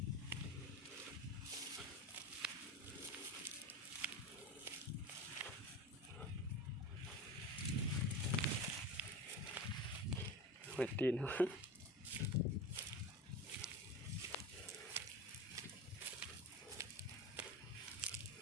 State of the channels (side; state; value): both; normal; correlation 0.28